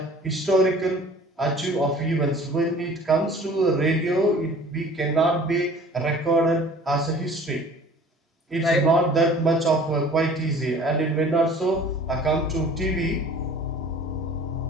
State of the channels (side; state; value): both; normal; correlation 0.48